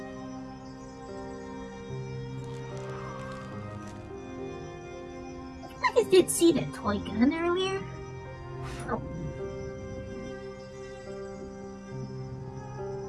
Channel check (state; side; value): identical; both; correlation 1.00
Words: I did see that toy gun earlier. Oh.